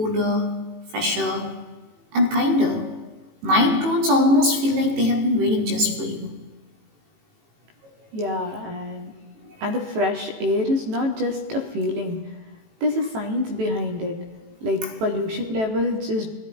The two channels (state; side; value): late; left; 18 ms